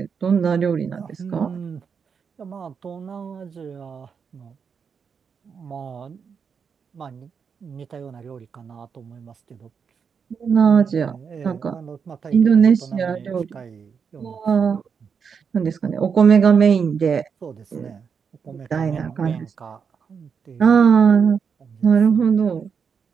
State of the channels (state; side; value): quieter; left; 6.4 dB